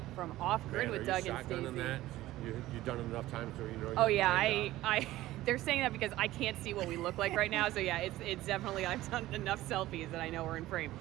from Off Grid with Doug and shotgunning Stacy. that? You've done it enough times so you know. Oh yeah, I they're saying that because I can't see what we look like right now. So yeah, it's definitely, I've done enough selfies that I know we're in frame.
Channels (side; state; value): left; quieter; 16.0 dB